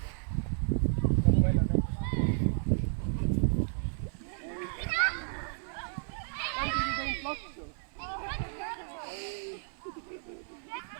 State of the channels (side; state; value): left; silent; 56 dB below the other